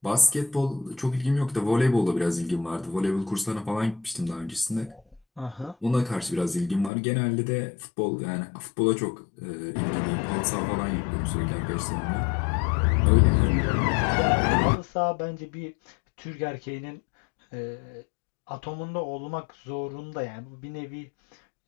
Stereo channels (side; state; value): right; drops out; at 6.9 s